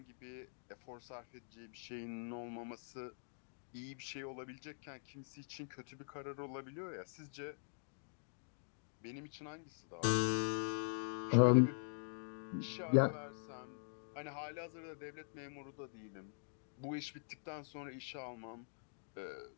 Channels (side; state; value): right; silent; digital silence